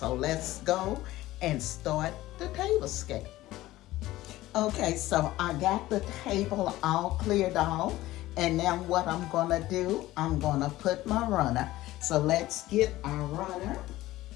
let's go and start the table scape. Okay, so I got the table all cleared off, and now what I'm gonna do, I'm gonna put my runner. So let's get our runner.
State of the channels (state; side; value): quieter; right; 16.6 dB